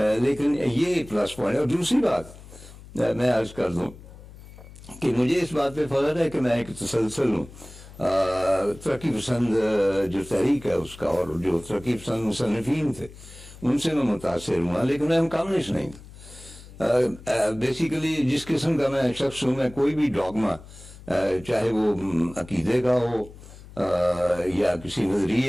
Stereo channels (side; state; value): left; noise; hum, 18 dB below the sound